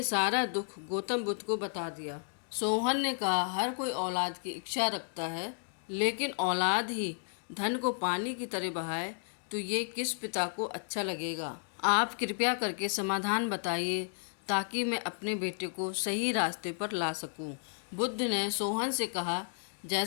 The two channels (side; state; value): right; silent; 56 dB below the other